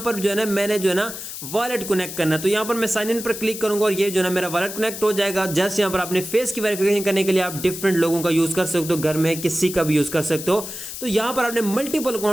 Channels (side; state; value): left; noise; hiss, 9 dB below the sound